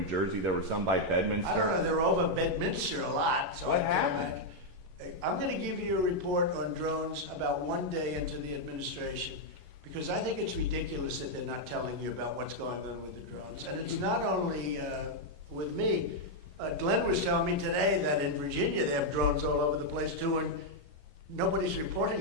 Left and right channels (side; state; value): left; late; 11 ms